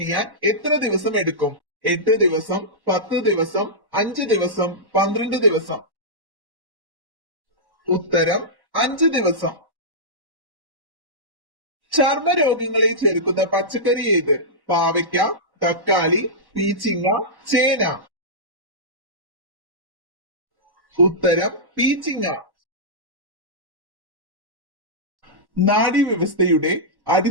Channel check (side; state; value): left; late; 1.1 ms